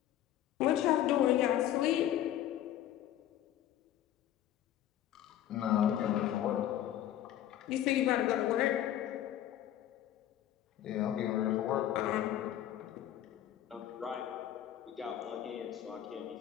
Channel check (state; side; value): quieter; right; 12.0 dB